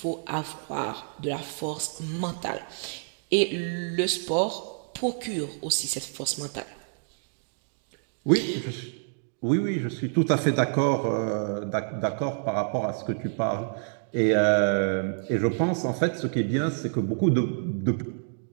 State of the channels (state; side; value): silent; left; digital silence